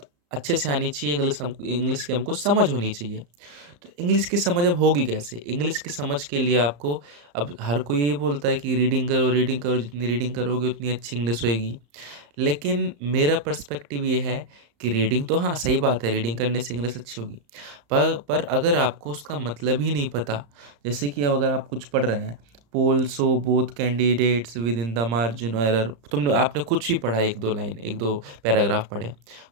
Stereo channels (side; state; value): left; late; 34 ms